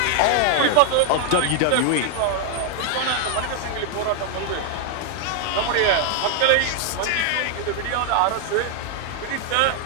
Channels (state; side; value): different; both; correlation 0.00